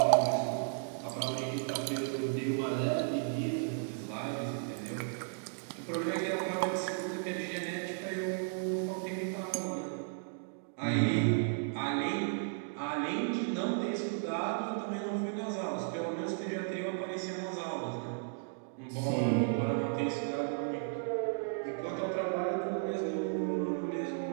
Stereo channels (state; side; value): silent; left; digital silence